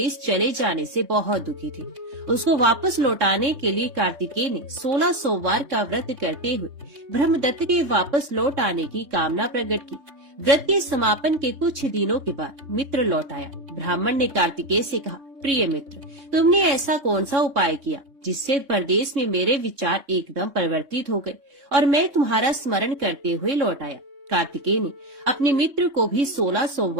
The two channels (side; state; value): left; late; 3.6 ms